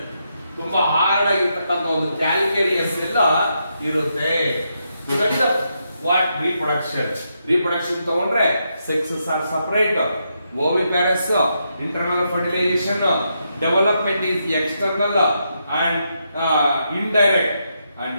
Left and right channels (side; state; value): both; inverted; correlation -0.81